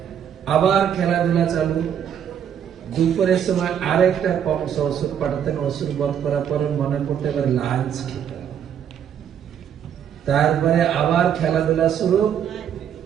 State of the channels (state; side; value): quieter; left; 8.9 dB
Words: আবার খেলাধুলা চালু। দুপুরের সময় আরেকটা কংস ওষুধ পাঠাতেন। ওষুধ বধ করার পরে মনে পড়তে এবার লাঞ্চ খেতে, তারপরে আবার খেলাধুলা শুরু।